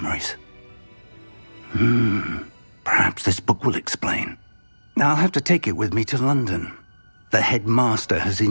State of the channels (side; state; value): both; inverted; correlation -1.00